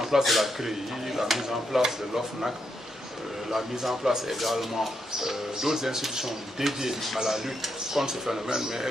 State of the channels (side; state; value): both; normal; correlation 0.80